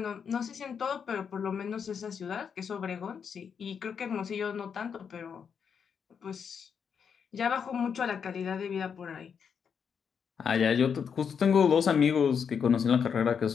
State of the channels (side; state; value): right; quieter; 6.9 dB